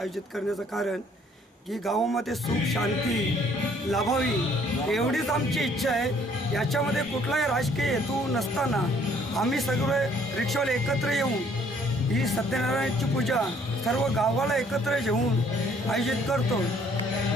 करण्याचं कारण की गावामध्ये सुख शांती लाभावी एवढीच आमची इच्छा आहे। याच्यामध्ये कुठलाही राजकीय हेतू नसताना आम्ही सगळे रिक्षावाले एकत्र येऊन ही सत्यनारायणाची पूजा सर्व गावाला एकत्र घेऊन आयोजित करतो।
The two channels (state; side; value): normal; both; correlation 0.61